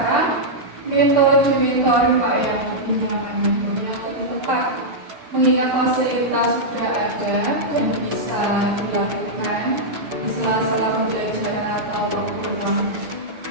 metode mentoring Pak yang lebih nyaman, yang lebih tepat mengingat fasilitas sudah ada yang bisa dilakukan di sela-sela pembelajaran atau waktu luang.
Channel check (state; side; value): late; left; 6.7 ms